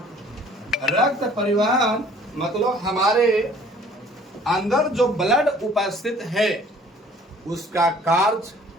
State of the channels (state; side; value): normal; both; correlation 0.54